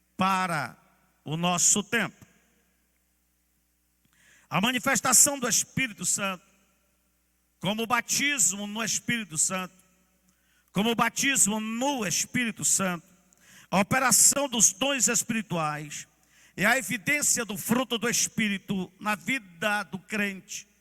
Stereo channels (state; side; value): identical; both; correlation 1.00